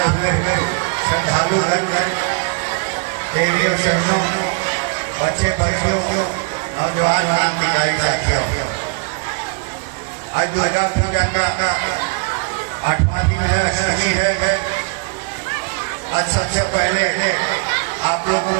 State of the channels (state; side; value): quieter; left; 32.7 dB